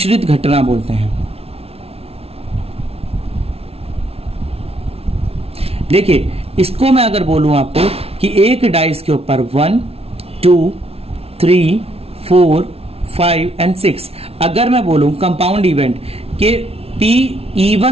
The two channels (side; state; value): left; late; 0.29 ms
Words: घटना बोलते हैं। देखिए, इसको मैं अगर बोलूं आपको कि एक डाइस के ऊपर 1 2 3 4 5 एंड 6, अगर मैं बोलूं कंपाउंड इवेंट के P